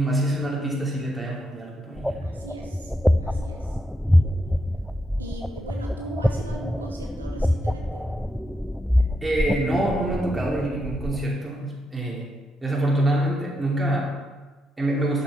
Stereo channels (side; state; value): both; normal; correlation 0.83